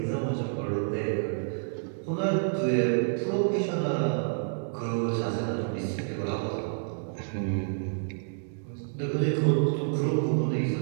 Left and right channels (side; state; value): left; silent; digital silence